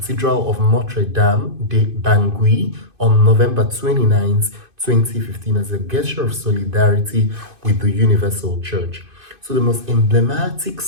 of Notre Dame de Bangui on November 29, 2015, as a gesture of solidarity with the Universal Church. So the most emblematic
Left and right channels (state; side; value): late; left; 2.5 ms